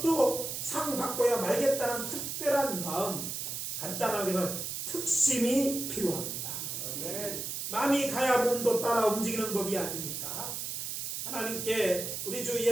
상 받고야 말겠다는 특별한 마음, 간단하게 해서 특심이 필요합니다. 마음이 가야 몸도 따라 움직이는 법이 아닙니까? 하나님께, 우리 주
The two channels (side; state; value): right; noise; hiss, 4 dB below the sound